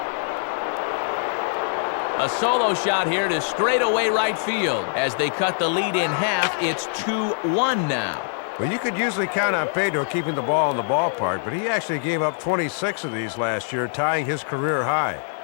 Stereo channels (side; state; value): right; silent; 56 dB below the other